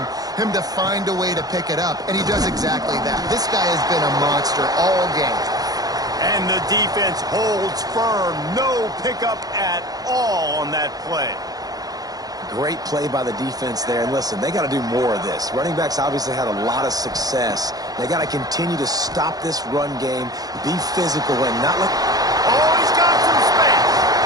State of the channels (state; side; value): late; left; 0.18 ms